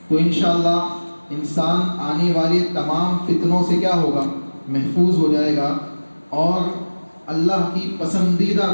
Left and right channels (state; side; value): inverted; both; correlation -1.00